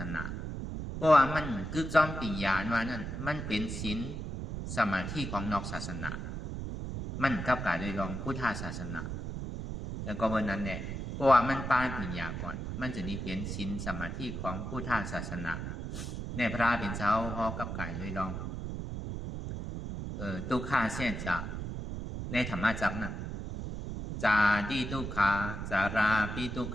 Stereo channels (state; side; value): noise; right; rumble, 5 dB below the sound